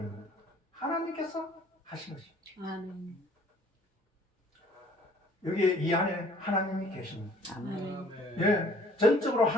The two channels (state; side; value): normal; both; correlation 0.55